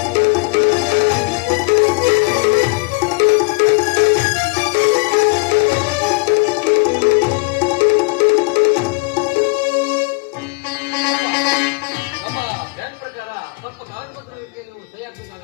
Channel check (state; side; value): quieter; right; 28.7 dB